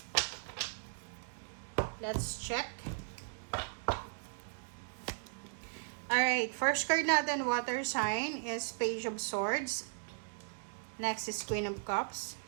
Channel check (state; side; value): silent; left; digital silence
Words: Let's check. Alright, first card natin, water sign, is Page of Swords. Next is Queen of Cups.